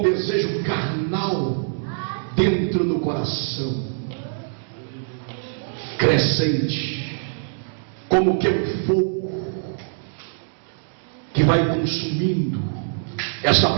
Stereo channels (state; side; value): silent; left; 63 dB below the other